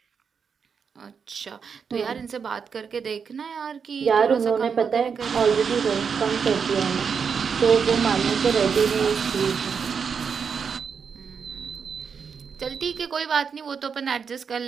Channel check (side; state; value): left; quieter; 6.3 dB